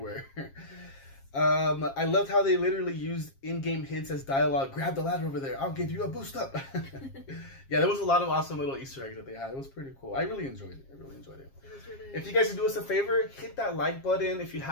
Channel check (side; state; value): right; late; 7.4 ms